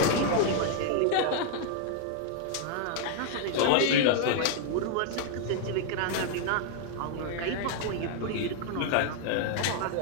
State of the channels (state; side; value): different; both; correlation 0.00